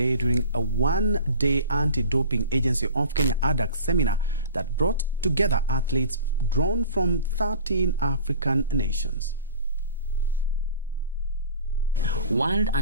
during a one-day Anti-Doping Agency of Kenya ADAC seminar that brought together athletes drawn from 13 African nations. World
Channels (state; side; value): inverted; both; correlation -0.40